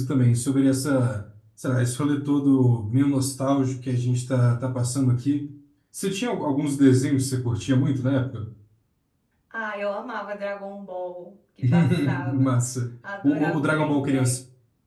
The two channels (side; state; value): both; identical; correlation 1.00